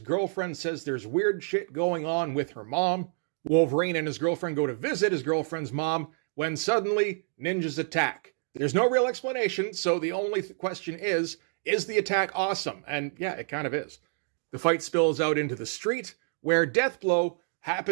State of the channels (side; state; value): left; silent; 56 dB below the other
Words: girlfriend says there's weird shit going on with her mom. Wolverine and his girlfriend go to visit his girlfriend's mom when suddenly ninjas attack. There's no real explanation, so the only question is the attack awesome? And yeah, it kind of is. The fight spills out into the street, where DEATHBLOW